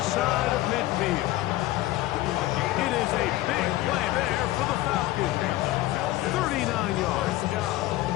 side of midfield. It is a big play there for the Falcons. 39 yards.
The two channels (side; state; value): right; quieter; 16.5 dB